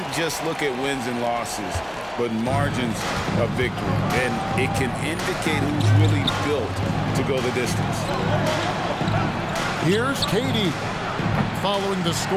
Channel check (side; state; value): both; identical; correlation 1.00